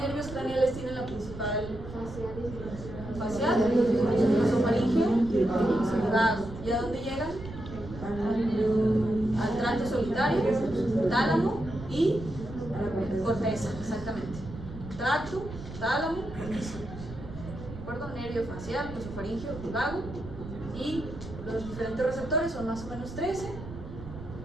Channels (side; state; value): right; noise; rumble, 12 dB below the sound